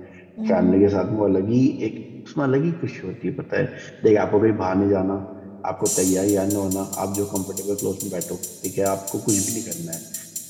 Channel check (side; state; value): both; identical; correlation 1.00